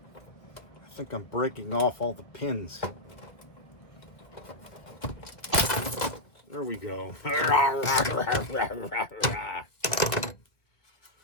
I'm breaking off all the pins. There we go.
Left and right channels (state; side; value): late; right; 1.8 ms